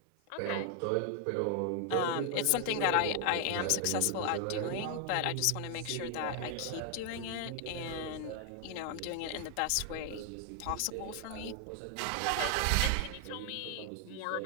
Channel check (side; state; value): both; different; correlation 0.00